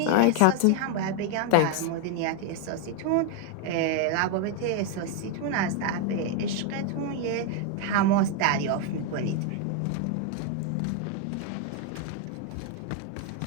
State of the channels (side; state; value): both; different; correlation 0.01